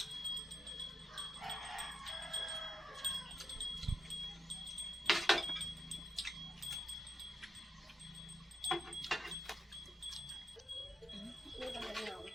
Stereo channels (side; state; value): both; normal; correlation 0.84